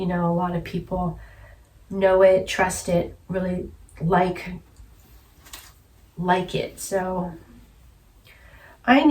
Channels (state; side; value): identical; both; correlation 1.00